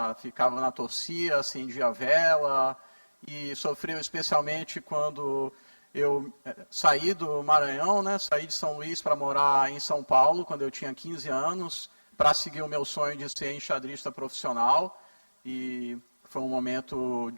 Ficava na torcida, acendia a vela, e sofreu especialmente quando eu saí do Maranhão, né? Saí de São Luís para morar em São Paulo, quando eu tinha 15 anos, para seguir o meu sonho de ser enxadrista profissional, e foi um momento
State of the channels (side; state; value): both; inverted; correlation -1.00